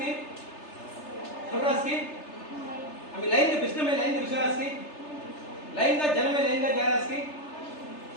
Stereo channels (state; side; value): late; right; 3.3 ms